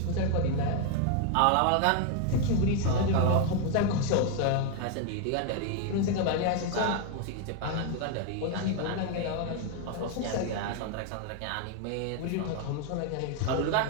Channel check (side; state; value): both; different; correlation 0.00